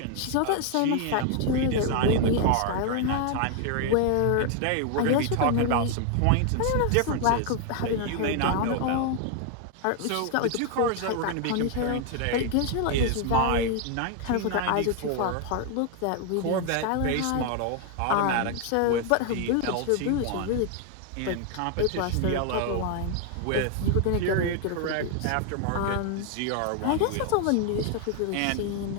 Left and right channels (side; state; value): both; different; correlation 0.00